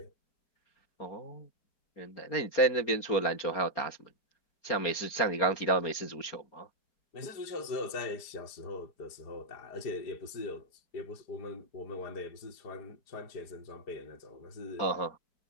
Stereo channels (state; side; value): late; right; 4.3 ms